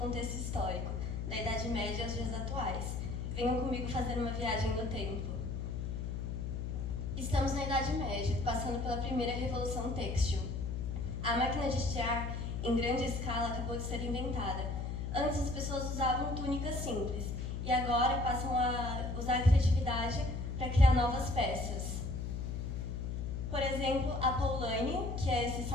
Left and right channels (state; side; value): noise; left; hum, 3 dB below the sound